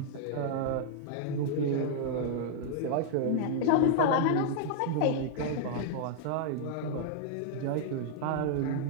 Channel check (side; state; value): both; different; correlation -0.01